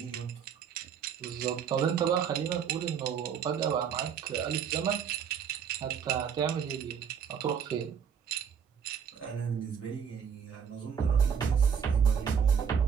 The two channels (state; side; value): quieter; left; 7.5 dB